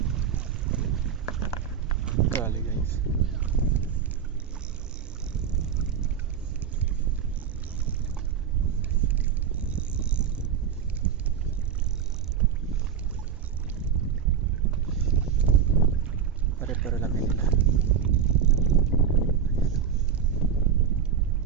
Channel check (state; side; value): quieter; left; 7.9 dB